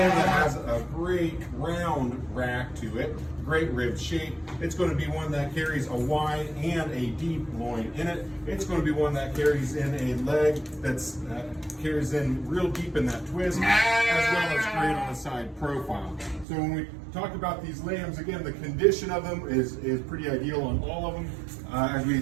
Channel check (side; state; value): left; drops out; at 16.4 s